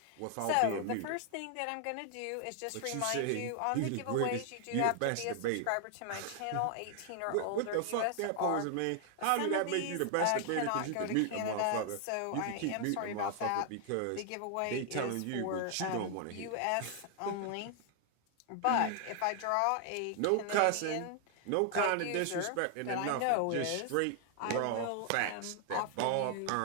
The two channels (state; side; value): different; both; correlation 0.00